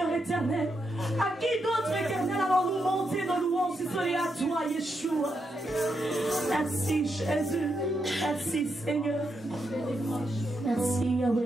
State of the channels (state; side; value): normal; both; correlation 0.82